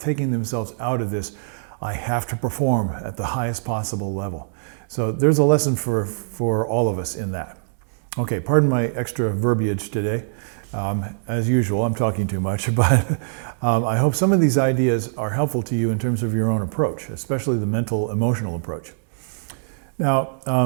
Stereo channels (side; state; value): left; silent; digital silence